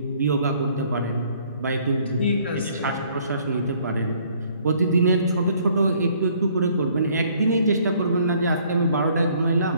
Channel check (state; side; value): inverted; both; correlation -0.61